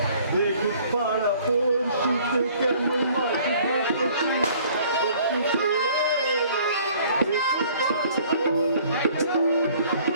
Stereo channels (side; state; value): both; inverted; correlation -0.55